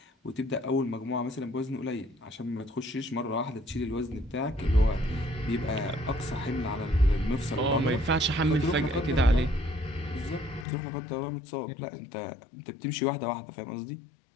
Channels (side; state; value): right; drops out; at 10.7 s